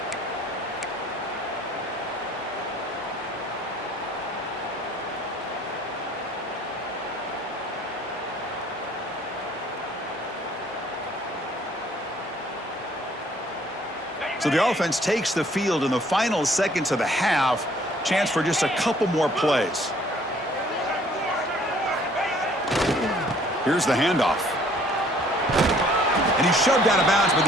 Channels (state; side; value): normal; both; correlation 0.59